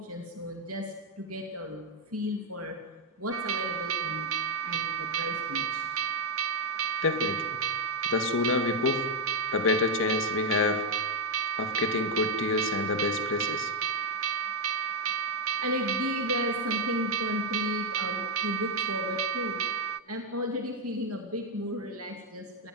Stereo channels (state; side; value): normal; both; correlation 0.01